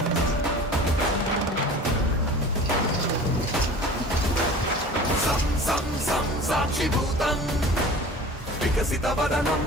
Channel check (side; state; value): both; normal; correlation 0.40